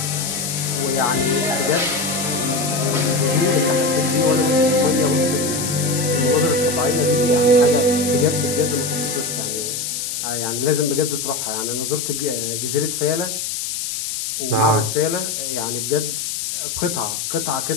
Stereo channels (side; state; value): left; noise; hiss, 3 dB below the sound